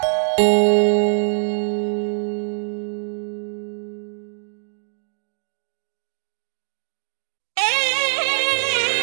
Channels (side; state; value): left; silent; digital silence